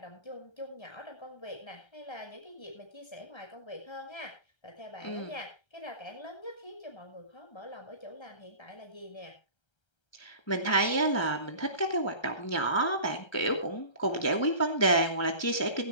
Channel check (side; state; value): right; late; 1.3 ms